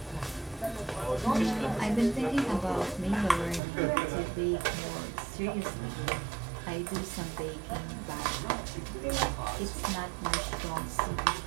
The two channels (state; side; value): drops out; left; at 3.6 s